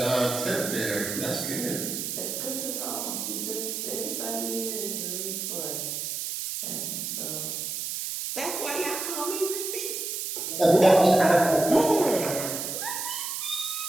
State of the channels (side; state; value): right; noise; hiss, 4 dB below the sound